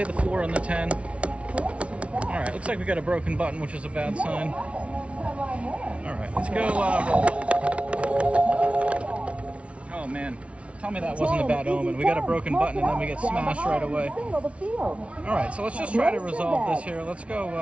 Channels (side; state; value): left; late; 0.062 ms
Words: the 4 on the 10. All right, looks like we got a broken button, which is a bad sign. All right, let's go. Oh man, tell me that wasn't a bad omen. We got a broken button and then we get smashed right away. All right, so let's just try to resolve this here. Let's go